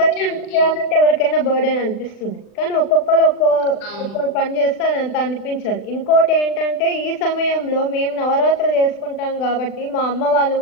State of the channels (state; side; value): late; right; 39 ms